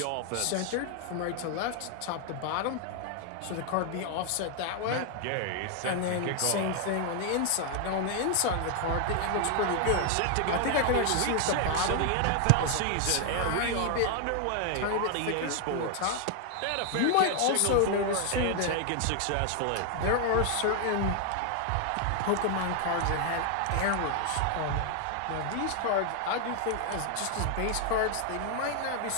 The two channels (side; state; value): both; different; correlation 0.00